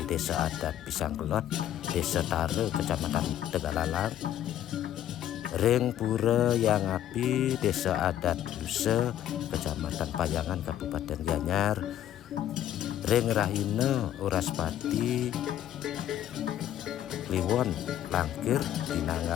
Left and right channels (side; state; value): right; quieter; 11.5 dB